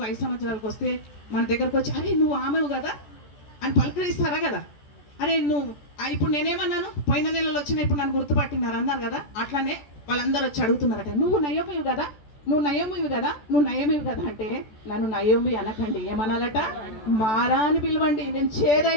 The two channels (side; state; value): right; late; 14 ms